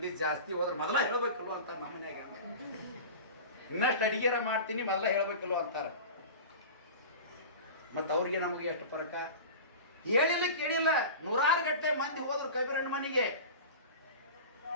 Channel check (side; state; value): both; inverted; correlation -0.33